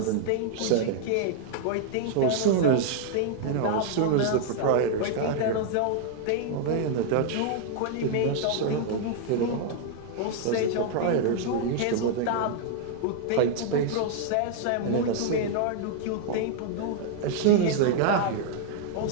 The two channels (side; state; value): both; different; correlation -0.01